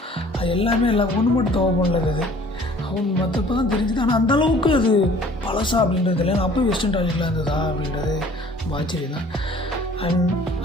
அது எல்லாமே ஒன்று மட்டும் தவ பண்ணல அது அவங்க மற்றப்போ தான் தெரிஞ்சுது. ஆனால் அந்தளவுக்கு அது பழசா அப்படின்றது இல்லை. அப்போ வெஸ்டர்ன் டாய்லெட்டில் இருந்ததா அப்படின்றது ஆச்சரியம் தான். அண்ட்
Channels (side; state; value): both; normal; correlation 0.52